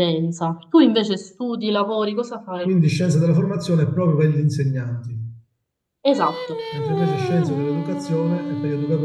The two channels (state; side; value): identical; both; correlation 1.00